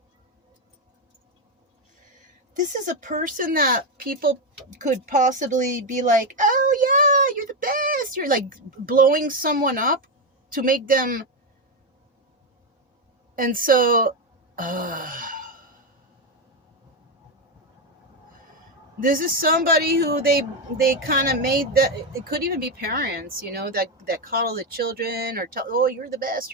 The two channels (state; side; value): normal; both; correlation 0.08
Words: This is a person that people could possibly be like, oh yeah, you're the best. You're like blowing someone up to make them. And so, this is somebody who they kind of made that. It could even be parents, you know, that coddle the children or tell, oh, you're the best,